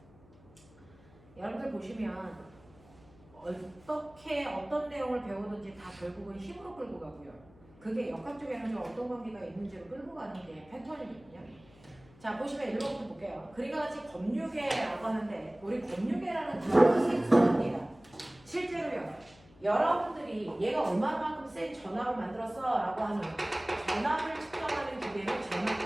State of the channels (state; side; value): noise; left; hum, 25 dB below the sound